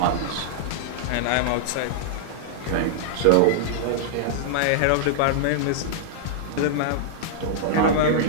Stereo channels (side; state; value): both; different; correlation -0.01